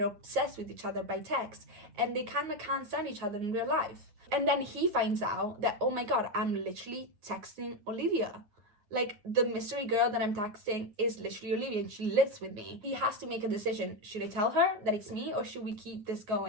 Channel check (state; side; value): late; left; 9.4 ms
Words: obsessed with each other by text, and they kind of can't stand each other in real life. And then he finds out that, oh my god, I'm literally texting Olivia. Like, the mystery girl that I'm texting is literally Olivia, and she lives with me. He has to make a decision. Should I tell her that it's me, or should we keep this